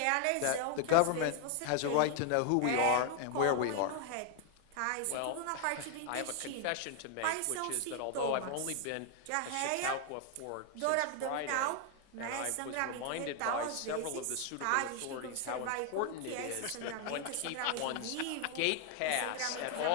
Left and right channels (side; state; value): both; different; correlation 0.00